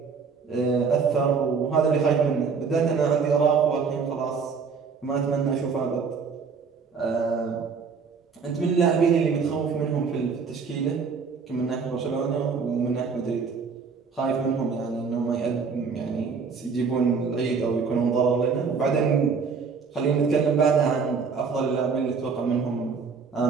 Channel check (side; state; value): left; quieter; 5.4 dB